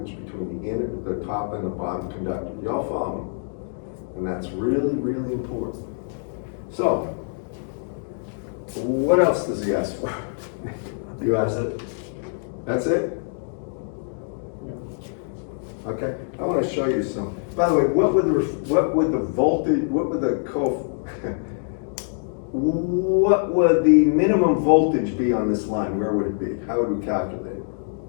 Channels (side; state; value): right; silent; digital silence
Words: between the top and the bottom conductor. Y'all follow me? And that's really, really important. So, what else does he ask for? You asked it? That's it? Okay, I want to show you some. By the way, what would the minimum voltage be on this line? Where would it be? How would we calculate it?